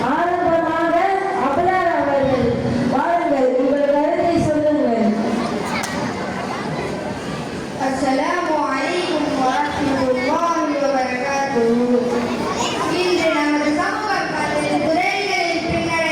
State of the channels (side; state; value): both; identical; correlation 1.00